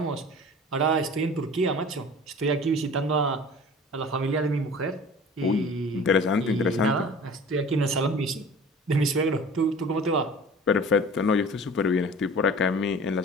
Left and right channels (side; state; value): both; normal; correlation 0.42